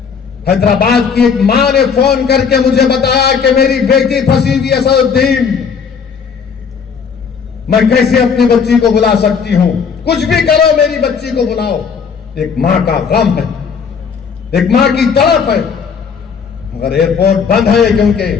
हैदराबाद की एक मां ने फोन करके मुझे बताया कि मेरी बेटी फंसी हुई है सऊदीन, मैं कैसे अपनी बच्ची को बुला सकती हूं? कुछ भी करो मेरी बच्ची को बुलाओ। एक मां का गम है, एक मां की तड़प है, मगर एयरपोर्ट बंद है क्योंकि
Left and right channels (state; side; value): quieter; right; 6.2 dB